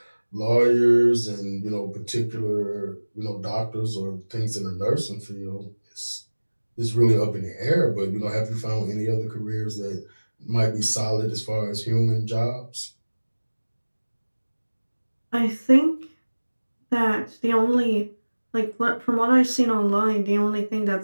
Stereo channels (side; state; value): both; inverted; correlation -1.00